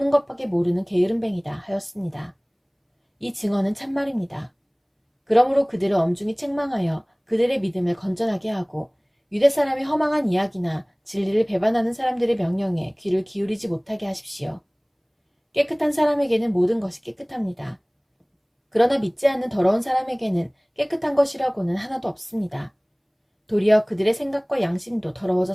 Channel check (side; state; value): both; identical; correlation 1.00